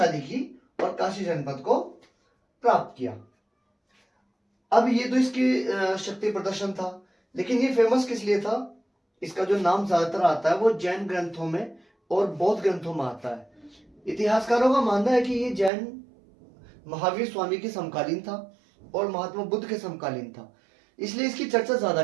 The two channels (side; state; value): left; drops out; at 15.7 s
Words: की और काशी जनपद को प्राप्त किया। अब ये तो इसकी शक्ति प्रदर्शन था, लेकिन ये फेमस किस लिए था? इसका जो नाम ज्यादातर आता है वो जैन ग्रंथों में और बौद्ध ग्रंथों में आता है। इतिहासकारों का मानना है कि ये जैन महावीर स्वामी के समकालीन था और महात्मा बुद्ध के समकालीन था, इसलिए इसकी चर्चा ज्यादा